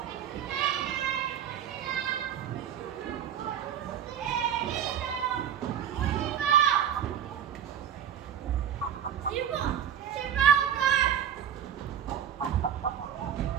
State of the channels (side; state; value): left; quieter; 9.3 dB